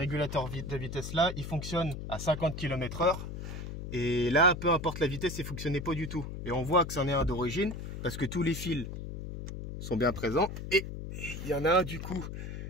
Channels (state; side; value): noise; left; hum, 7 dB below the sound